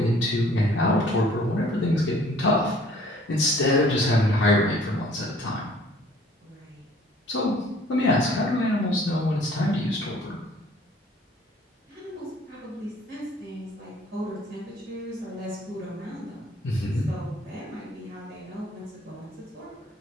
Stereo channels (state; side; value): normal; both; correlation 0.55